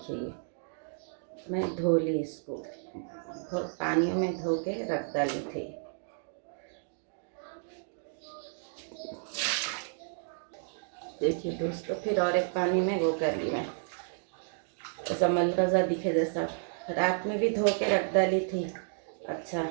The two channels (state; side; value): silent; left; digital silence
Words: ये मैं धो ली, इसको पानी में धो के रख डाली थी। देखिए दोस्तों, फिर और एक पानी में वो कर ली मैं, ऐसा मलरजा दिखे जैसा। रात में भी धो के रख डाली थी, अच्छा